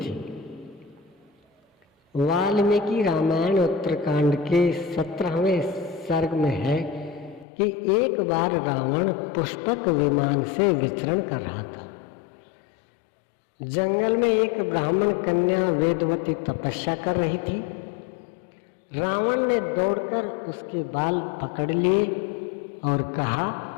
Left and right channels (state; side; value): drops out; right; at 7.5 s